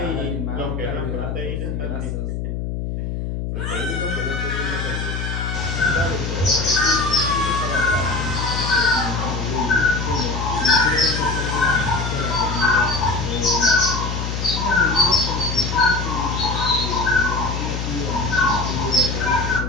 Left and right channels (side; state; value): left; noise; hum, 3 dB below the sound